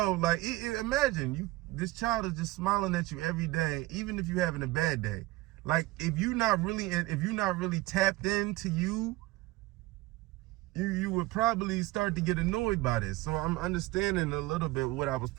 Like, imagine this child is just smiling at you every day, even if you're having a bad day. Like, if you're not really tapped into you would probably start to get annoyed by this. So I'm understanding a little bit what I was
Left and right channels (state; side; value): quieter; left; 19.9 dB